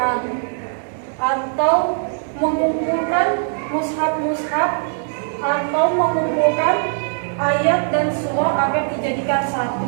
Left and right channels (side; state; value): left; silent; digital silence